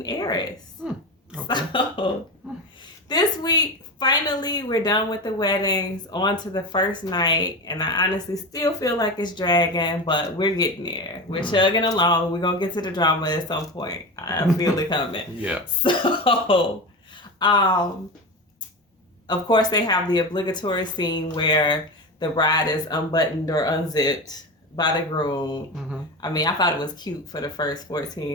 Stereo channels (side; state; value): both; normal; correlation 0.24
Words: Airris. Okay. So, this week, finally, we're done with the weddings, on to the first night, and I honestly still feel like it's dragging, but we're getting there. We're chugging along. We're going to get to the drama at some point. I feel it coming. Yeah. So, of course, they have the obligatory scene where the bride is unbuttoned or unzipped by the groom. Mm-hmm. I mean, I thought it was cute for the first